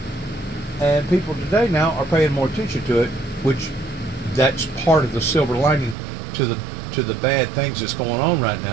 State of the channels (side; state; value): left; drops out; at 6.0 s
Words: and people today now are paying more attention to it, which that's part of the silver lining to the bad things that's going on right